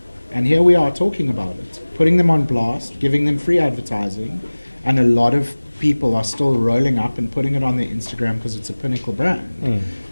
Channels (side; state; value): both; inverted; correlation -1.00